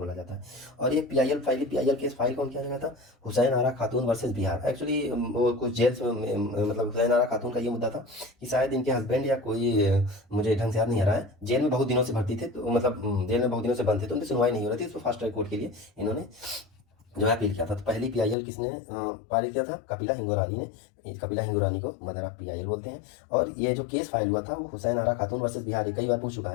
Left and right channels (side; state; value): right; drops out; at 18.4 s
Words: जाता है। और ये पीआईएल केस फाइल कौन किया गया था, हुसैन आरा खातून वर्सेस बिहार। एक्चुअली वो कुछ जेल में, मतलब हुसैन आरा खातून का ये मुद्दा था कि शायद इनके हस्बैंड या कोई, मुझे ढंग से याद नहीं आ रहा है, जेल में बहुत दिनों से भर्ती थे, तो मतलब जेल में बहुत दिनों से बंद थे, तो उनकी सुनवाई नहीं हो रही थी, तो फास्ट ट्रैक कोर्ट के लिए इन्होंने जो है अपील किया था। तो पहली पीआईएल किसने पारित किया था, कपिला हिंगो रानी ने। कपिला हिंगो रानी को मदर ऑफ पीआईएल बोलते हैं। और ये जो केस फाइल हुआ था वो हुसैन आरा खातून वर्सेस बिहार। ये कई बार पूछ चुका